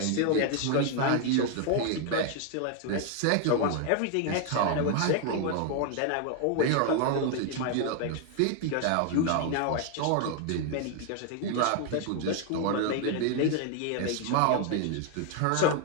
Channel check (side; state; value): both; different; correlation 0.00